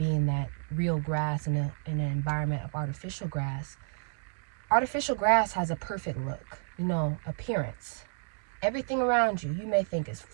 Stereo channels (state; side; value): silent; left; digital silence